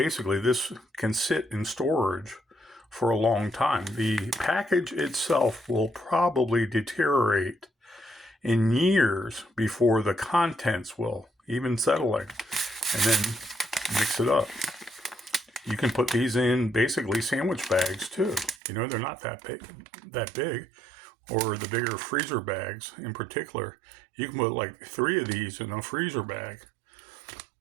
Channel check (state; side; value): drops out; left; at 18.6 s